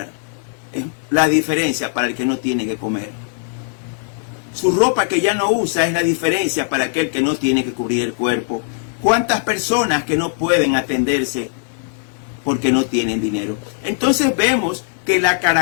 es la diferencia para el que no tiene que comer. Su ropa que ya no usa es la diferencia para aquel que no tiene que cubrir el cuerpo. ¿Cuántas personas que no pueden atenderse porque no tienen dinero? Entonces vemos que la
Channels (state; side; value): silent; right; 56 dB below the other